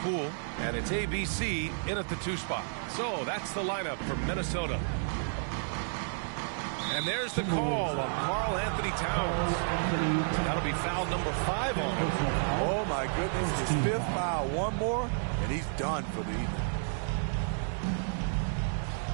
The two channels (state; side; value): silent; left; digital silence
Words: And it's ABC in at the 2 spot. So that's the lineup for Minnesota. And there's the call on Karl Anthony Towns. That'll be foul number 5 on him. Oh my goodness, his 5th foul. One more, and he's done for the evening.